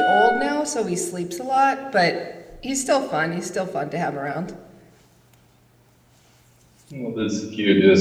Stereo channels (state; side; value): identical; both; correlation 1.00